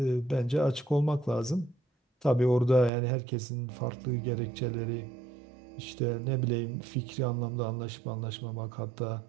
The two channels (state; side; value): drops out; left; at 2.9 s